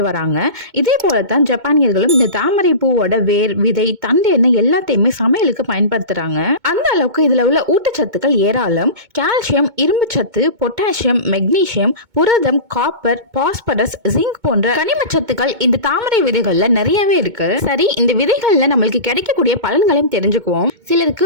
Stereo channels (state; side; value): late; left; 2.2 ms